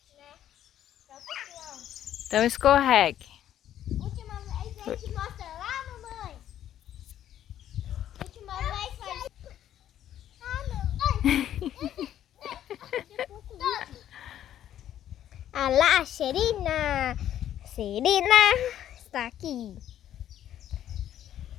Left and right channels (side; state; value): right; quieter; 11.2 dB